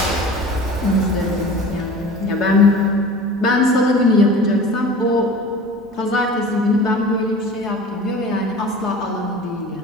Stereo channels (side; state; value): both; normal; correlation 0.40